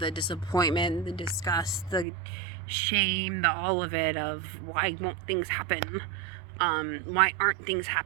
disappointment, the disgust, the shame, the all of it, of why won't things happen? Why aren't things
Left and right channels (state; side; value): drops out; left; at 2.1 s